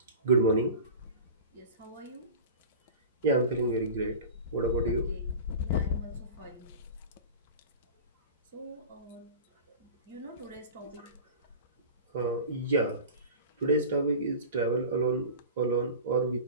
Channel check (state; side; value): inverted; both; correlation -0.35